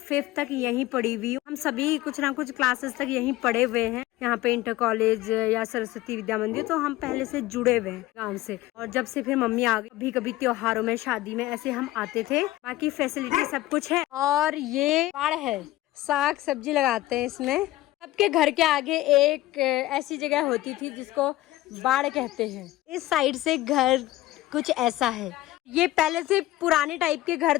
तक यहीं पढ़ी हुई हूँ। हम सभी कुछ ना कुछ क्लासेस तक यहीं पढ़े हुए हैं, यहाँ पे इंटर कॉलेज या सरस्वती विद्या मंदिर। तो हम पहले से जुड़े हुए हैं गाँव से। और जब से फिर मम्मी आ गई, कभी कभी त्योहारों में, शादी में ऐसे हम आते थे। बाकी फैसिलिटी सब कुछ है। और ये बाड़ है, साग सब्जी लगाते हैं इसमें। सबके घर के आगे एक ऐसी जगह होती थी जिसको बाड़ कहते हैं। इस साइड से घर कुछ ऐसा है। ये पहले से पुराने टाइप के घर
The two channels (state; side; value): quieter; right; 16.7 dB